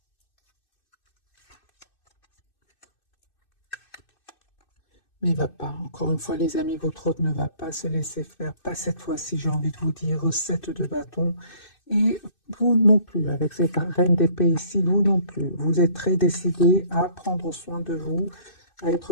Mais il va pas. Encore une fois, les amis, votre hôte ne va pas se laisser faire. Pas cette fois-ci, j'ai envie de vous dire, recette de bâton. Et vous non plus, avec cette reine d'épée ici, vous non plus. Vous êtes très décidé à prendre soin de vous, à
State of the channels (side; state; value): right; late; 2.6 ms